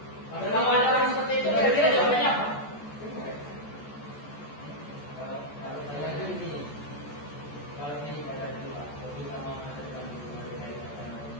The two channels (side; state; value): right; late; 14 ms